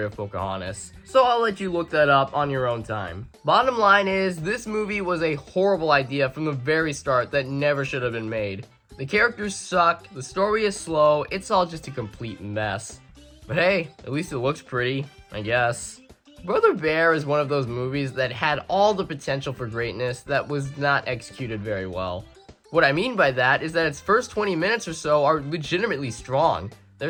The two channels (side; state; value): both; identical; correlation 1.00